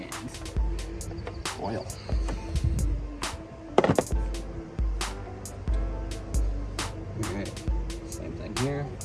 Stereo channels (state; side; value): identical; both; correlation 1.00